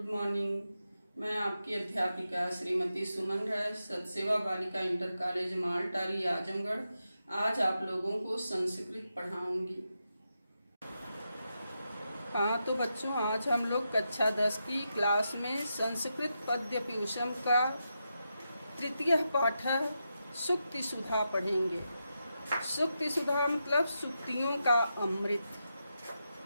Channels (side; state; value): both; inverted; correlation -0.87